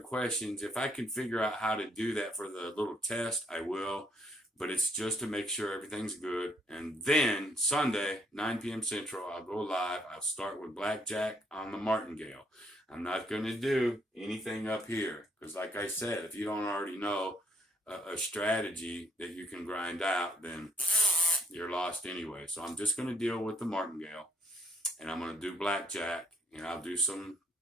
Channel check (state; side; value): normal; both; correlation 0.69